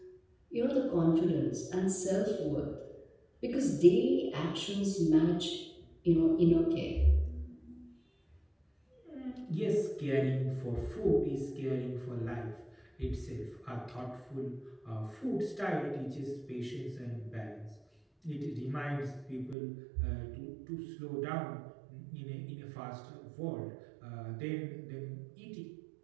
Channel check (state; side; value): drops out; left; at 19.6 s